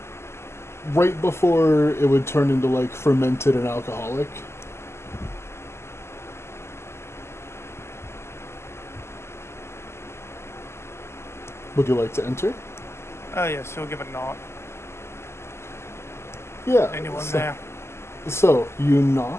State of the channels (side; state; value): right; late; 0.13 ms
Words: right before it would turn into like fermented and alcoholic. Would you like to enter? Oh, yes, he'll give a knock. Yeah. Anyone so, there? So, you